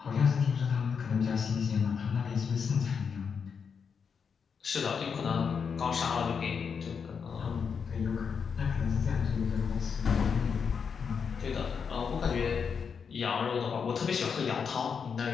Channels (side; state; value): right; quieter; 6.3 dB